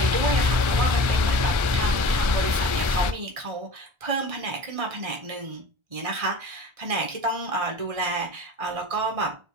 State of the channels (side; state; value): left; late; 1.4 ms